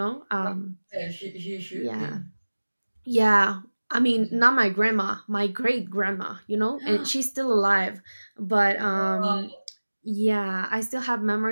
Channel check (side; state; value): both; inverted; correlation -1.00